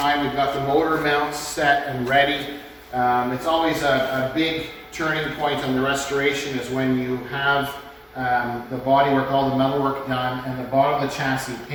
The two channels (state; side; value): identical; both; correlation 1.00